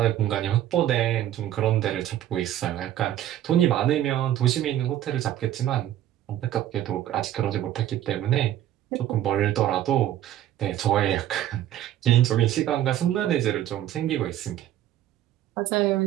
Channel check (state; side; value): quieter; left; 12.2 dB